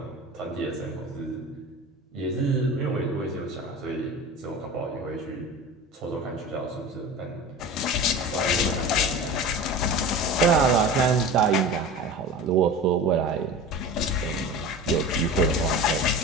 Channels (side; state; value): both; normal; correlation 0.34